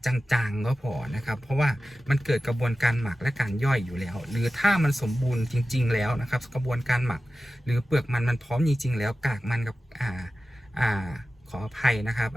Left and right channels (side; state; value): both; normal; correlation 0.95